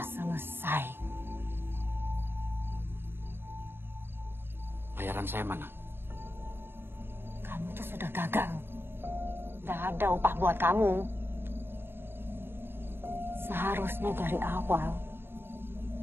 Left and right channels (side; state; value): left; late; 0.11 ms